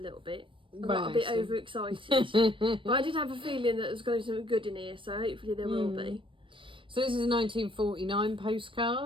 little bit. I got a bit overexcited. But I did have a feeling that there's going to be something good in here, so hopefully there will be. So this is a 1949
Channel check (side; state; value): left; late; 0.25 ms